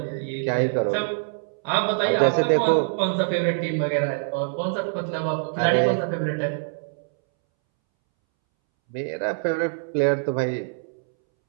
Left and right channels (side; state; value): left; silent; 62 dB below the other